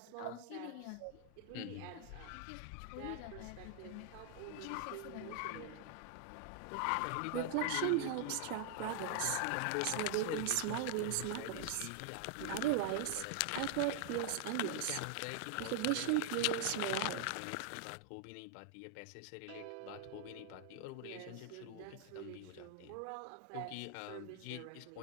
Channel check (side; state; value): both; different; correlation 0.00